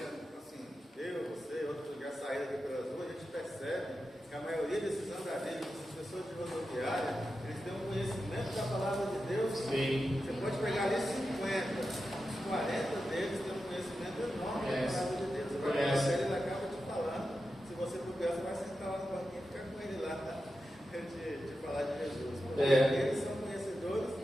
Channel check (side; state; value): both; normal; correlation 0.90